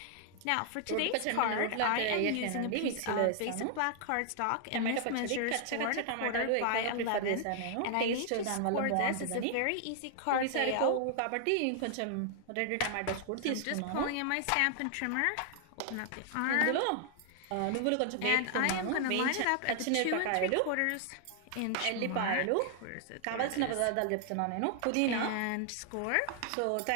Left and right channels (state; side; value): different; both; correlation 0.00